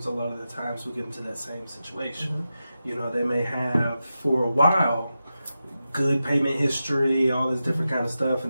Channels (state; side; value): inverted; both; correlation -0.91